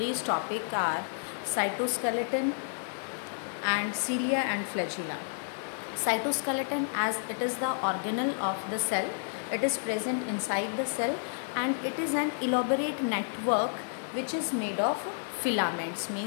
topic are cytoskeleton and cilia and flagella. Cytoskeleton, as it is the organelle of the cell, it is present inside the cell and it is an elaborate network which is made of filaments,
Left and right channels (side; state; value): right; silent; 57 dB below the other